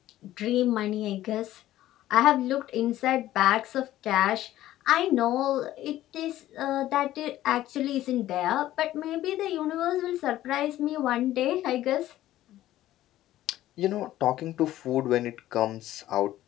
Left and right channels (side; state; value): right; quieter; 14.2 dB